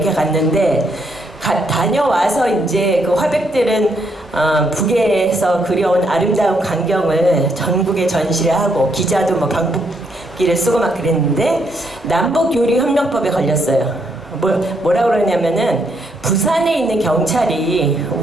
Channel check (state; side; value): normal; both; correlation 0.75